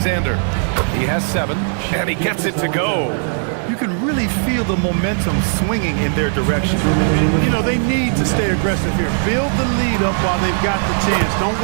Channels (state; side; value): silent; left; 68 dB below the other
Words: He has 7, and he gets it to go. You can really feel the momentum swinging in their direction. You know, they need to stay aggressive here. Build the lead up while they've got the chance. Don't